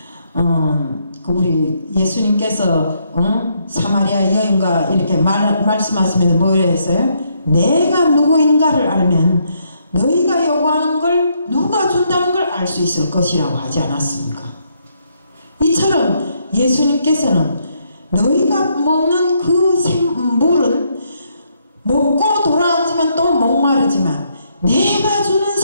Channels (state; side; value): inverted; both; correlation -0.74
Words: 우리 예수님께서 사마리아 여인과 이렇게 말씀하시면서 뭐라 했어요? 내가 누구인가를 알면 너희가 요구하는 걸 누가 준다는 걸 알 수 있을 것이라고 하지 않았습니까? 이처럼 예수님께서는 너희가 먹는 그 물은 먹고 돌아왔지만 또 목마르지만 내가 주는